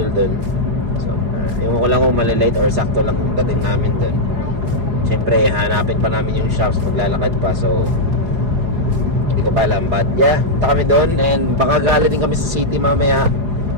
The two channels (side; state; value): left; late; 4.8 ms